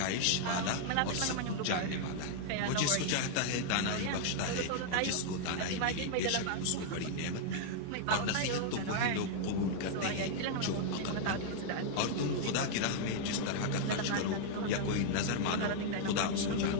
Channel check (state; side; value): different; both; correlation -0.01